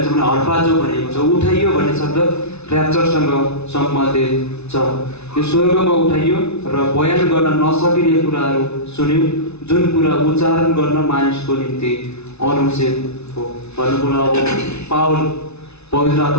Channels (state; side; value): late; right; 0.81 ms